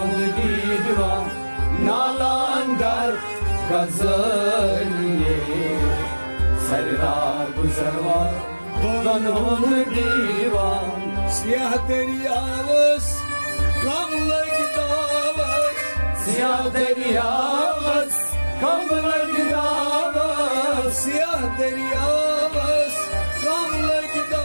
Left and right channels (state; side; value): inverted; both; correlation -1.00